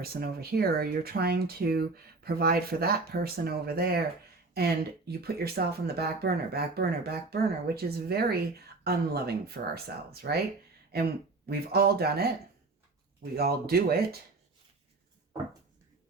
over here, or you're trying to provide for that person over there, and you put yourself on the back burner, which is very unloving for ourselves, right? And we've all done it. We all do it.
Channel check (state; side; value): quieter; left; 3.6 dB